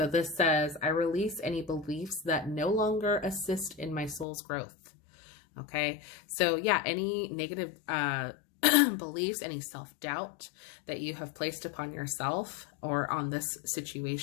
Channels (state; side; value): drops out; right; at 4.2 s